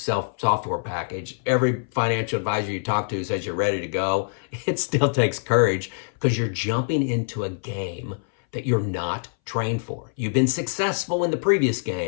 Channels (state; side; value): silent; right; 60 dB below the other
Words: package. Every financial advisor you talk to says you're ready to go. It still takes courage because you're jumping into a game that you're not trained for. You've been successful in the previous